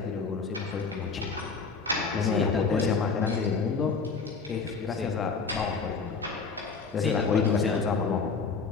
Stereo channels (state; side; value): quieter; right; 4.9 dB